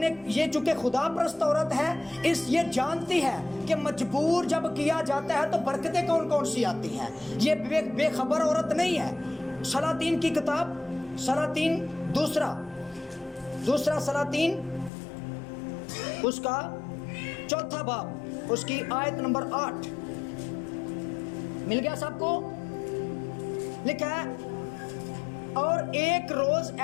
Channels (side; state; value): right; drops out; at 14.9 s